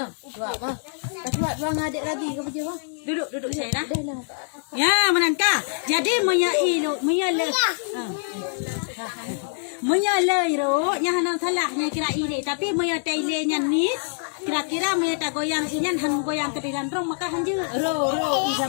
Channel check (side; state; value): right; silent; 62 dB below the other